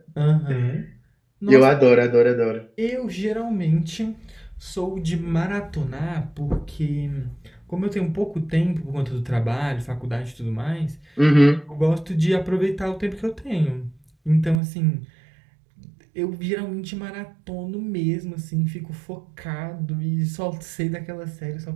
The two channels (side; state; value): left; drops out; at 14.6 s